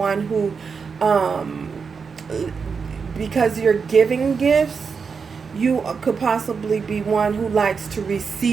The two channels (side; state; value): left; quieter; 5.5 dB